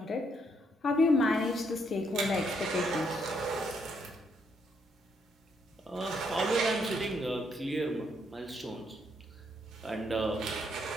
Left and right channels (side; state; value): both; normal; correlation 0.73